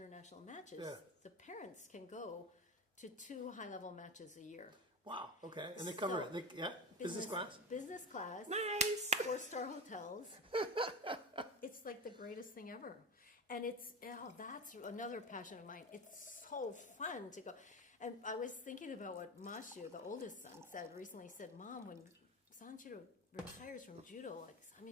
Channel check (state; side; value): normal; both; correlation 0.22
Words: matches, the parents can go to 2 high-level matches a year. Wow. Okay. And they cover So, it. Business class. Business class. Nice. 4-star hotels. It's like the greatest thing ever. And that's another passion of mine. It's so fun to go. And I was thinking about what Mashu, the oldest son, recently said, Mom, when Sanjiro retires from judo, like,